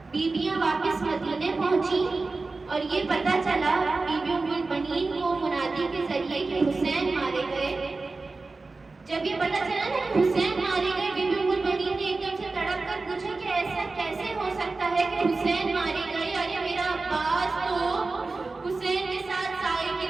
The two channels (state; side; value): quieter; left; 3.7 dB